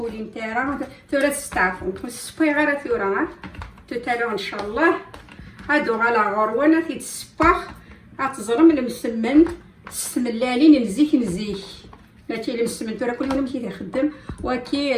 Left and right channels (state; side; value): identical; both; correlation 1.00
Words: نتاعها ثورة تستعفو نكون صفيغه ثورة توتالو ان شاء الله. هادو على غروانه تيتسباخ غتزرم المسمن السملالين مزيك مزيك ماشي المسمن ثورة كل يوم كيخدم وكي